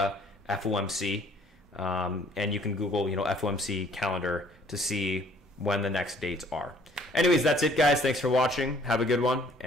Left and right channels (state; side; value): normal; both; correlation 0.59